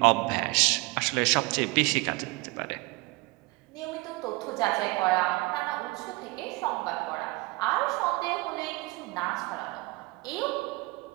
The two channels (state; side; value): quieter; left; 24.2 dB